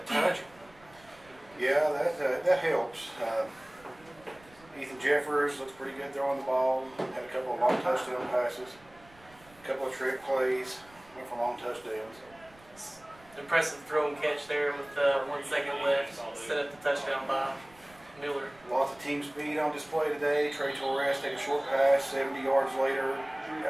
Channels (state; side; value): noise; right; rumble, 26 dB below the sound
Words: touch him. Yeah, that helps. Ethan Jeffers looks pretty good throwing the ball. Had a couple of long touchdown passes, a couple of trick plays, went for long touchdowns. Impressive throw and catch there with 1 second left. Set up the touchdown by Miller. Lots of team speed on display today. Trey Torres take a short pass, 70 yards later,